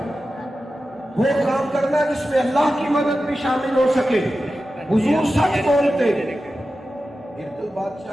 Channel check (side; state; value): both; normal; correlation 0.93